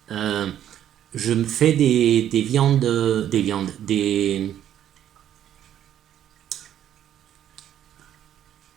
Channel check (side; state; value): left; quieter; 10.8 dB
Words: euh, je me fais